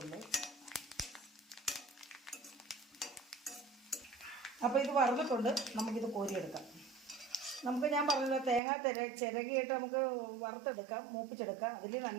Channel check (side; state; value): left; drops out; at 8.6 s